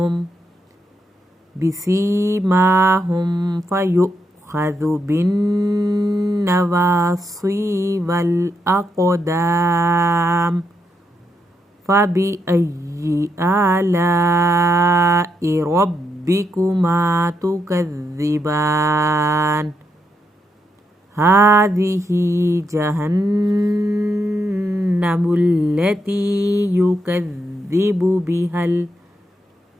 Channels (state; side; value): normal; both; correlation 0.81